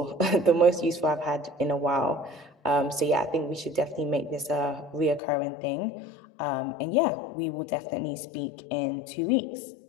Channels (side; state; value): right; drops out; at 5.2 s